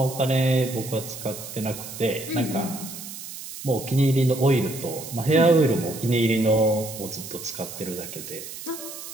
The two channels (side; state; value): right; noise; hiss, 11 dB below the sound